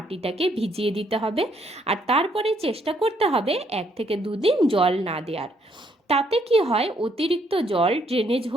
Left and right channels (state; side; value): normal; both; correlation 0.70